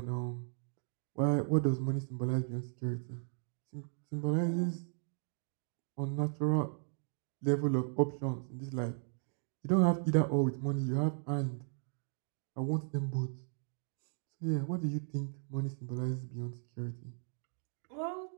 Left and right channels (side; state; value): left; silent; digital silence